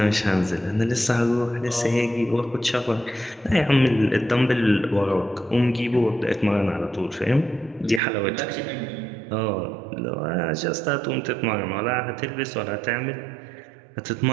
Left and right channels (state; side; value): drops out; left; at 8.0 s